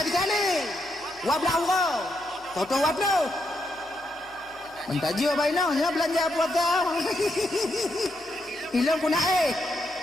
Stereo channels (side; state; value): left; noise; hum, 29 dB below the sound